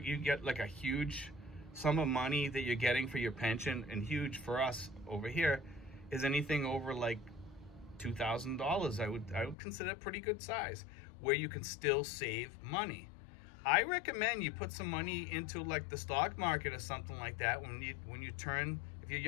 get like a huge sum of money that you're getting for your pension, and huge for us over here is anything over like $2,000. I would consider a pretty good size, where you can still save money. I recommend you put some money into like the stock market or something like that when you turn, if you're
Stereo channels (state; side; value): drops out; right; at 9.6 s